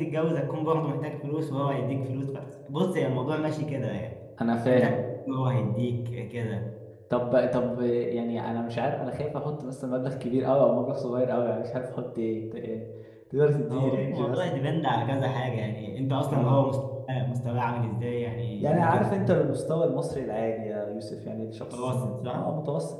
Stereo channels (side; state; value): both; identical; correlation 1.00